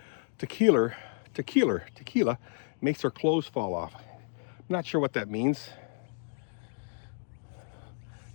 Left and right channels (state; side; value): silent; right; 57 dB below the other